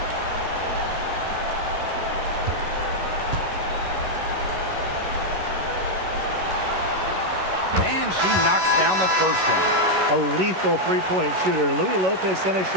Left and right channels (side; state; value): left; late; 11 ms